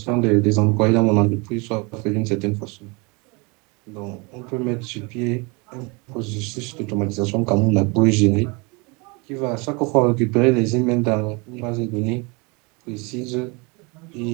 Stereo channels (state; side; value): quieter; left; 29.0 dB